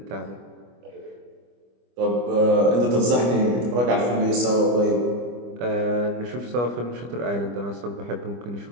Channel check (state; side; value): late; left; 25 ms